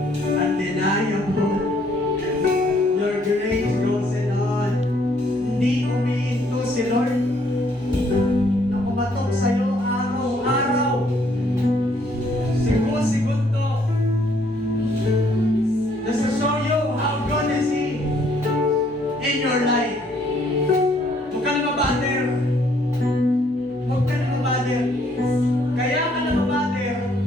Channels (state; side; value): normal; both; correlation 0.66